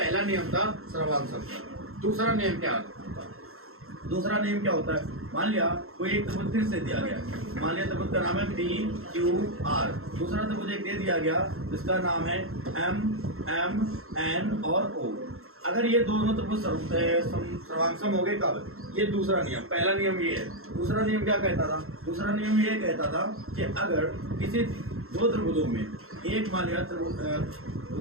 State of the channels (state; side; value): late; left; 0.62 ms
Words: नियम था सर्वांगसम का। दूसरा नियम क्या होता है? दूसरा नियम क्या होता है? मान लिया कोई एक त्रिभुज फिर से दिया गया, मान लिया त्रिभुज का नाम है पी क्यू आर। दूसरा त्रिभुज एक दे दिया गया जिसका नाम है एम एम एन और ओ। अगर ये दोनों त्रिभुज सर्वांगसम हो गए कब? ये दूसरा नियम। पहला नियम ये है। दूसरा नियम क्या कहता था? दूसरा नियम ये कहता था कि अगर किसी 2 त्रिभुजों में एक मान लिया